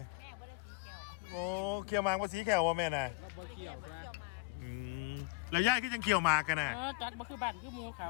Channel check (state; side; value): quieter; right; 25.6 dB